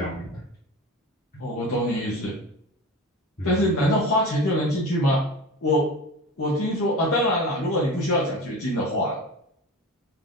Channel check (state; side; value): normal; both; correlation 0.31